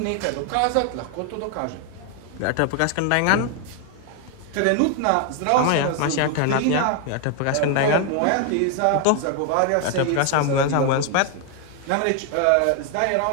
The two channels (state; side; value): different; both; correlation 0.01